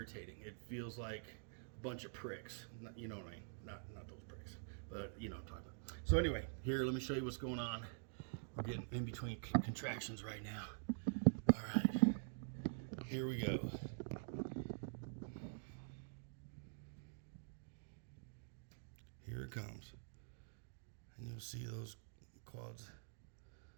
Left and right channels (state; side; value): silent; left; digital silence